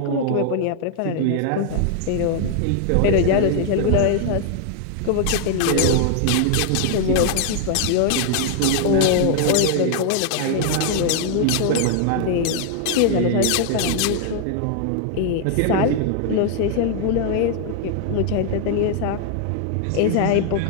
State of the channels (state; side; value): different; both; correlation 0.00